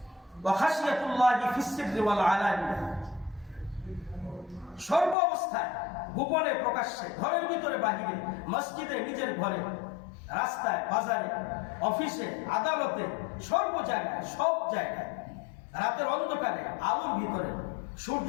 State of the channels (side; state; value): right; drops out; at 5.2 s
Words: ওয়াখাশিয়াতুল্লাহি ফিস সিররি ওয়াল আলানিয়া, সর্ব অবস্থায়, গোপনে প্রকাশ্যে, ঘরের ভিতরে বাহিরে, মসজিদে, নিজের ঘরে, রাস্তায়, বাজারে, অফিসে, আদালতে, সর্ব জায়গায়, সব জায়গায়, রাতের অন্ধকারে, আলোর ভিতরে, সূর্য